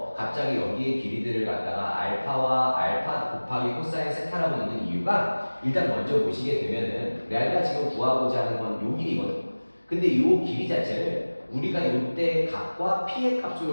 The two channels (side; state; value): both; inverted; correlation -1.00